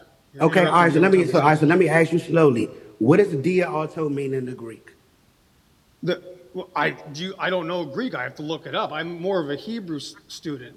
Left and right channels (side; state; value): both; identical; correlation 1.00